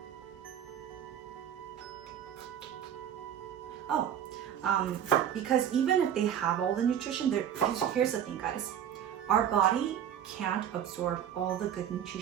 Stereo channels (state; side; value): quieter; left; 9.6 dB